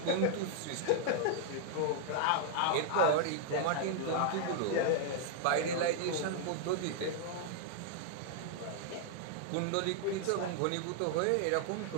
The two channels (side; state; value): both; different; correlation -0.01